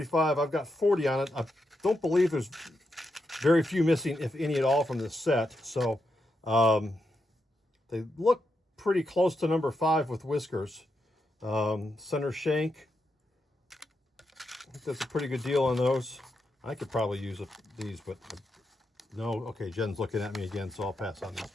I've got 40 on it. I don't believe there's very few missing, if any at all, from this set. So they look pretty close to number 5 with whiskers. Center shank. I think that's a pretty good deal on those. I could probably use these, but no. Okay, Jen's looking at me again, so I'll pass on this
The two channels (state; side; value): normal; both; correlation 0.84